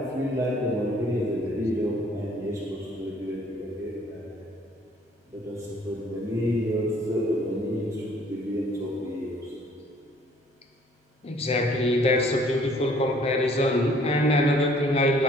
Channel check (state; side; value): normal; both; correlation 0.58